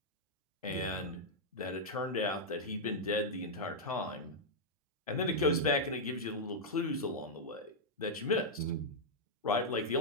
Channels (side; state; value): both; normal; correlation -0.04